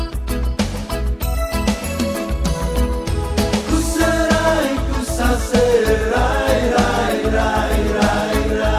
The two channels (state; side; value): identical; both; correlation 1.00